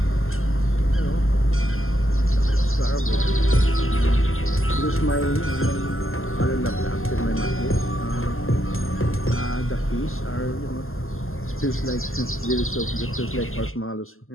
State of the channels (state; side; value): late; right; 0.61 ms